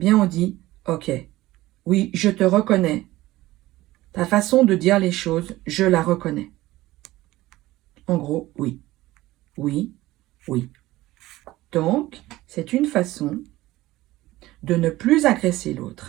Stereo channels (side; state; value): left; quieter; 17.4 dB